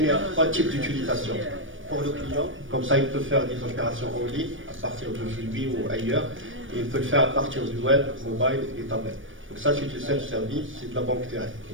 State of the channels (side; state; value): left; late; 0.57 ms